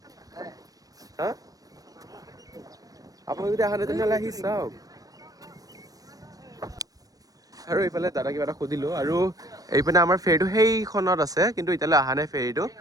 হা? আপোনালোক যদি আহা নাই তেনেহ'লে আহি চাওক। আৰু এইফালে দাদা কিবা এটা সুধিলো, আৰু এইপিনে আমাৰ ফেৰীটো সেইখনত আছে, কিন্তু এতিয়ালৈ অহা নাই ফেৰীটো।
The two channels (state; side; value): late; left; 0.18 ms